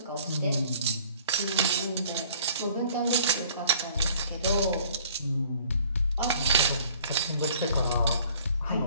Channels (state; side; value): inverted; both; correlation -0.55